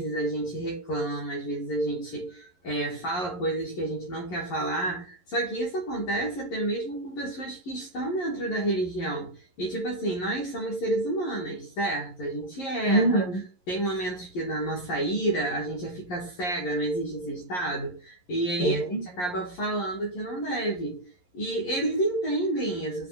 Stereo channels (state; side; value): late; right; 11 ms